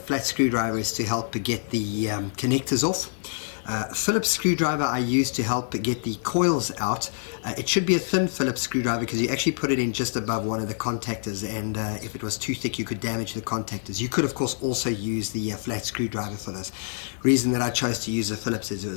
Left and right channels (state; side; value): silent; right; digital silence